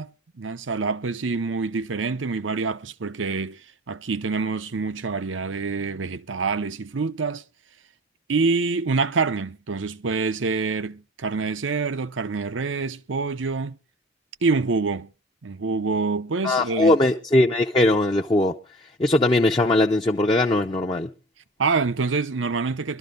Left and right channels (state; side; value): normal; both; correlation 0.39